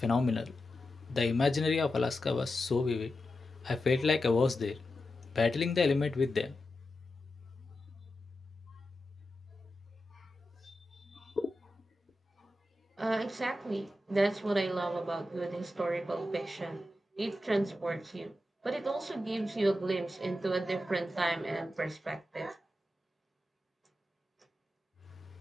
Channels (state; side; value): normal; both; correlation 0.90